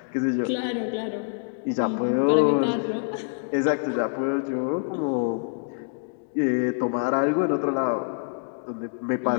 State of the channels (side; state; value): right; silent; digital silence